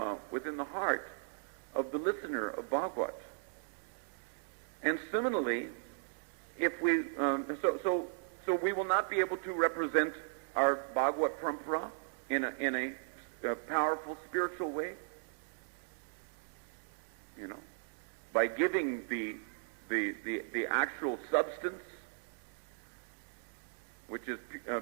within the heart of the listener of Bhagavad. And similarly, if we so we will not be able to represent our Bhagavad Parampara in a powerful spiritual way, by giving the actual substance, which is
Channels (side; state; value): left; silent; digital silence